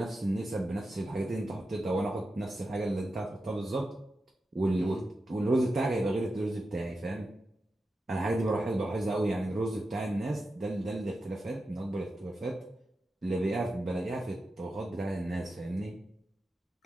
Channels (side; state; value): both; normal; correlation 0.90